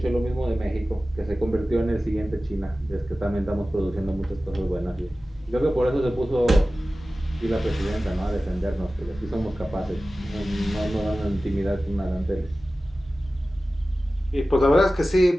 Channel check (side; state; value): both; normal; correlation 0.96